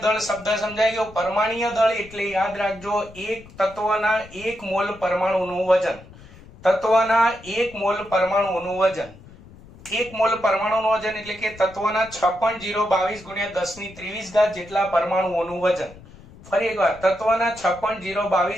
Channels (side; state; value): left; noise; rumble, 20 dB below the sound